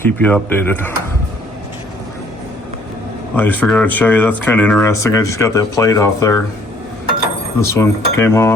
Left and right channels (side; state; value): both; normal; correlation 0.61